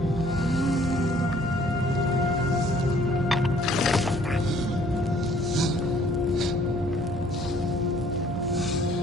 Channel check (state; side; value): normal; both; correlation 0.58